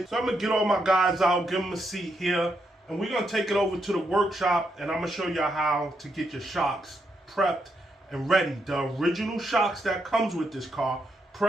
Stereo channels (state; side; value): normal; both; correlation 0.80